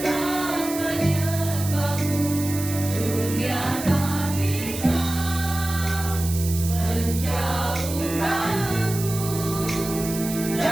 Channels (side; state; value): right; noise; hiss, 9 dB below the sound